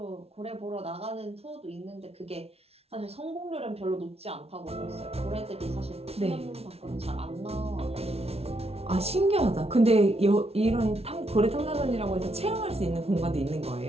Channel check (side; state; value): left; late; 0.30 ms